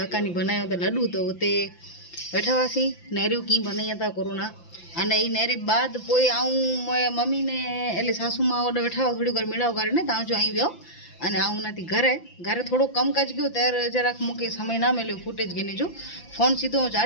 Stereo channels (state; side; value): late; right; 5.9 ms